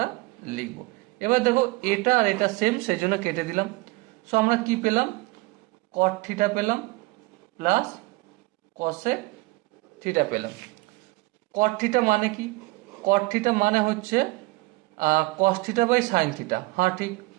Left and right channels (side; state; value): left; quieter; 22.8 dB